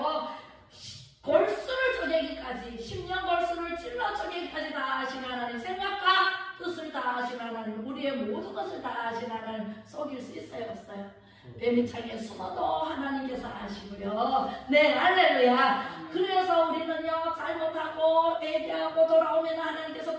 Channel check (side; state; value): both; identical; correlation 1.00